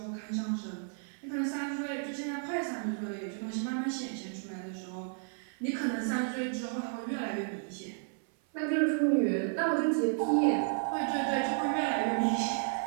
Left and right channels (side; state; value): left; silent; 56 dB below the other